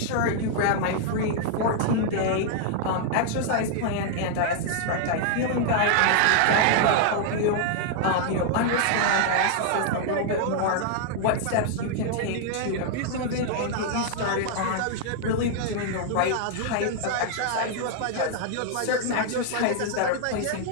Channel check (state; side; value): different; both; correlation 0.00